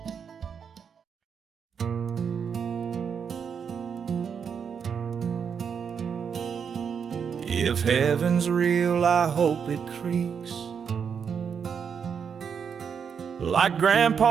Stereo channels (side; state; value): left; quieter; 6.9 dB